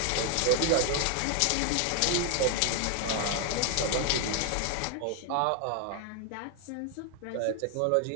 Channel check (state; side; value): different; both; correlation 0.00